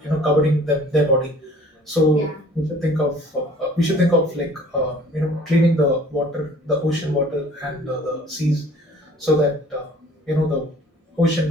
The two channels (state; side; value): normal; both; correlation 0.52